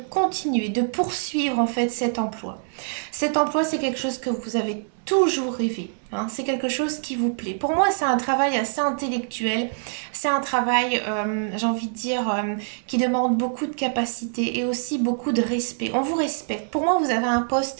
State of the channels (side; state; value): left; silent; digital silence